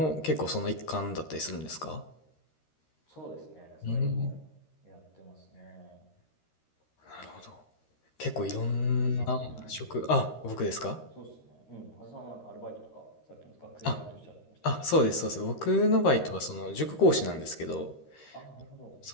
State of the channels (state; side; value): late; right; 13 ms